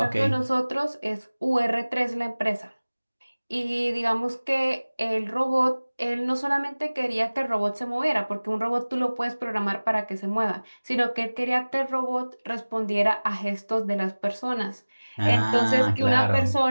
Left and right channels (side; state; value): both; inverted; correlation -1.00